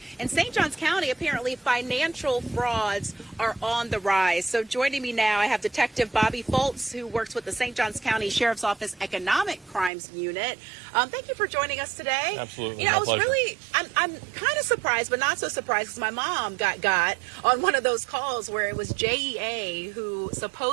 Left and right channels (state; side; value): drops out; left; at 9.9 s